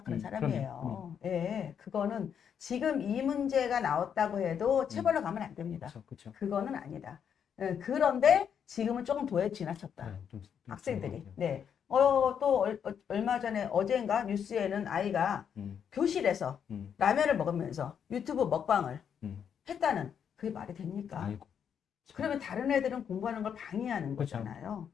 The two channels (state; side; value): quieter; right; 7.9 dB